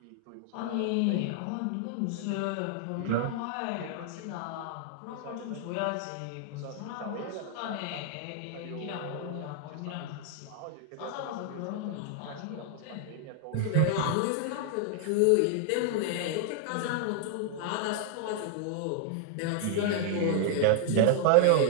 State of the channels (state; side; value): different; both; correlation 0.00